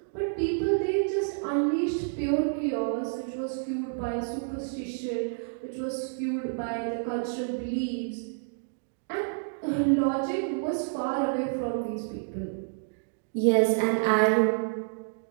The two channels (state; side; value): silent; left; digital silence